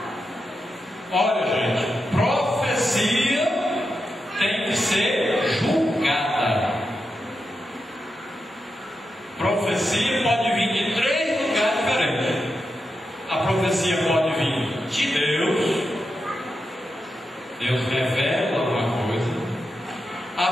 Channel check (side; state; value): both; normal; correlation 0.88